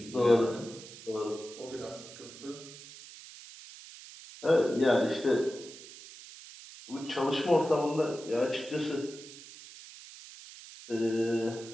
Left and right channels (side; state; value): right; noise; hiss, 16 dB below the sound